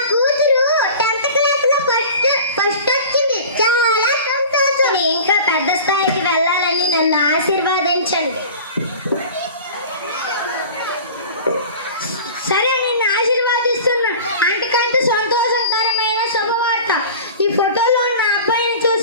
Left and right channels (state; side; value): inverted; both; correlation -0.38